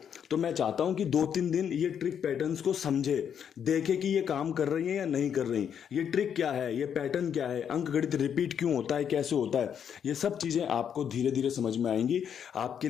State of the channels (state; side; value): quieter; right; 8.2 dB